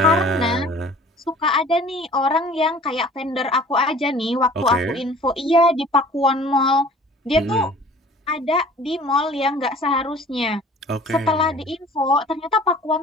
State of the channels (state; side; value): normal; both; correlation 0.49